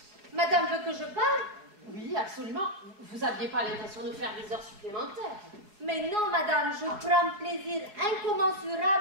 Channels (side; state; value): left; late; 4.8 ms